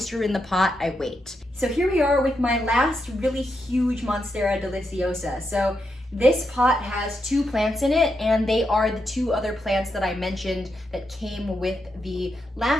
in the pot, I wait. So here we are with my last really huge Monstera deliciosa. So this pot has 2 plants in it, and they are the 2 other plants that I mentioned that came with the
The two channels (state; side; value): normal; both; correlation 0.83